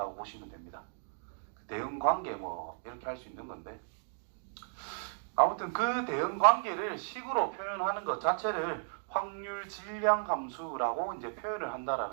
보시면 됩니다. 대응 관계 뭐 이렇게 할 수 있는 건데, 아무튼 그 대응 관계를 식으로 표현하는 것 자체를 확률 질량 함수라고 이제 표현을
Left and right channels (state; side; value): silent; left; digital silence